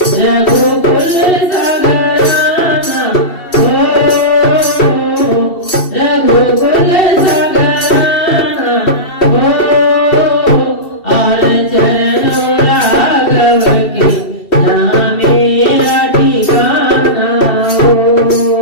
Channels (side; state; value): right; late; 2.7 ms